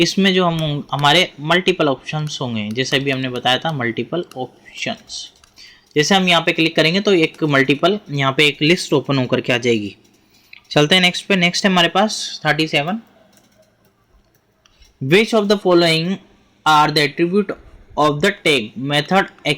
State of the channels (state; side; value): identical; both; correlation 1.00